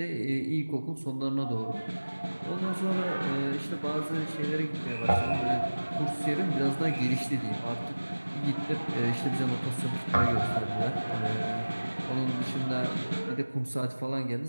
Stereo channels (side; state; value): both; inverted; correlation -1.00